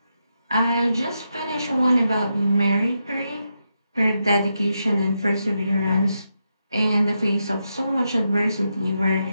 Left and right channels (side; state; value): both; inverted; correlation -0.84